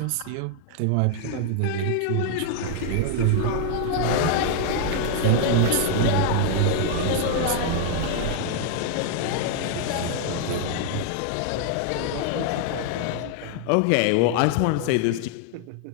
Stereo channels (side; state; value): both; different; correlation 0.00